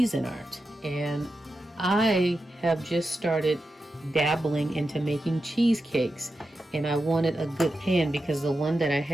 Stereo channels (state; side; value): normal; both; correlation 0.90